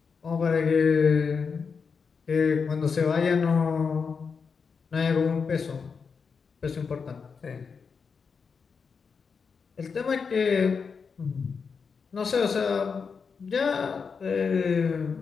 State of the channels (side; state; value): right; quieter; 5.6 dB